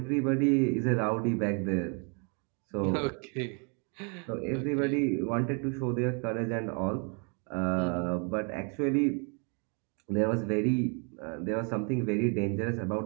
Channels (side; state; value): left; quieter; 36.9 dB